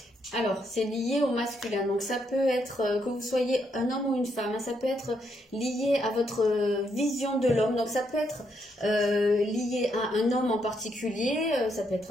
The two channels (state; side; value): normal; both; correlation 0.76